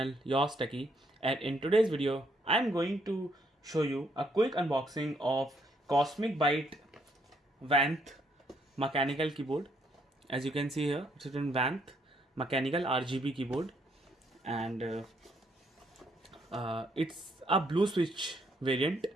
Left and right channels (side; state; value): both; normal; correlation 0.71